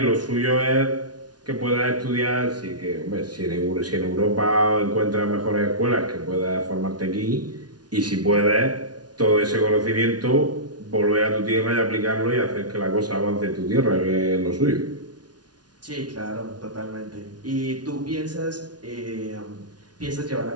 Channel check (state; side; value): late; left; 0.69 ms